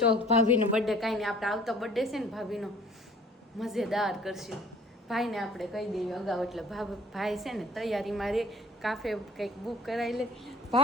ભાભીનો બર્થડે. કાંઈ નહીં, આપણે આવતો બર્થડે છે ને ભાભીનો મજેદાર કરશું. ભાઈને આપણે કહી દઈએ અગાઉ એટલે ભાઈ છે ને તૈયારીમાં રે, કાફે કંઈક બુક કરાવી લે.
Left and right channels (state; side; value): normal; both; correlation 0.52